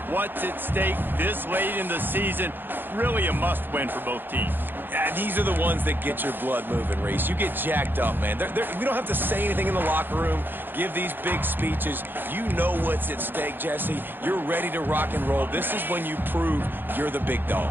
what's at stake this late in the season. Really a must-win for both teams. Yeah, these are the ones that get your blood moving, Reese. You get jacked up, man. We don't have to say anything in the locker room, give these big speeches. You know what's at stake, Jesse. You're ready to rock and roll. This is when you prove you're the big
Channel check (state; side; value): late; left; 0.096 ms